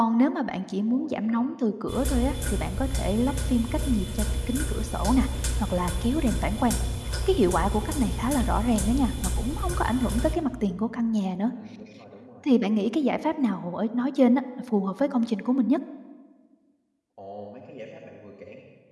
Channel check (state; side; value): identical; both; correlation 1.00